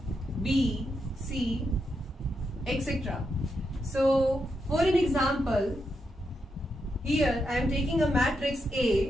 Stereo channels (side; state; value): both; normal; correlation 0.84